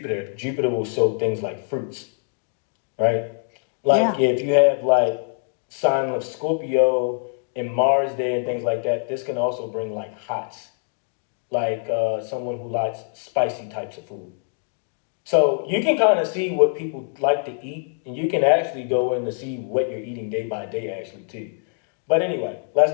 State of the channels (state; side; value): silent; right; 63 dB below the other